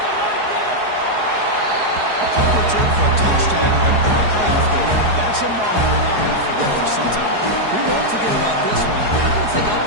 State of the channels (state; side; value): late; left; 4.7 ms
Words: A punt return for a touchdown in a playoff game. That's a moment we're not going to forget for some time. We won't forget about this one. I don't think I'll